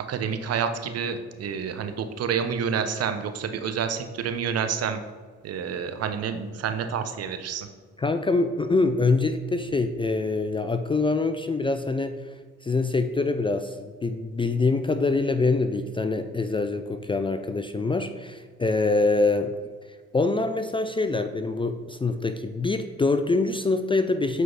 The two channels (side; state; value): both; normal; correlation 0.60